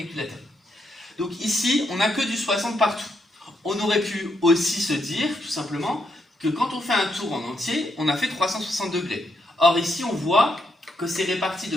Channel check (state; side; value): normal; both; correlation 0.79